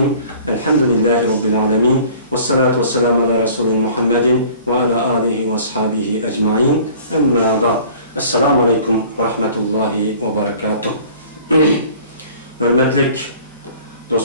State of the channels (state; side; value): inverted; both; correlation -0.49